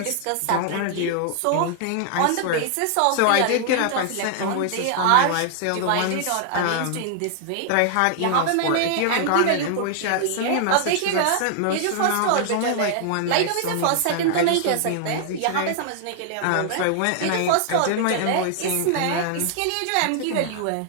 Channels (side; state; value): both; different; correlation 0.00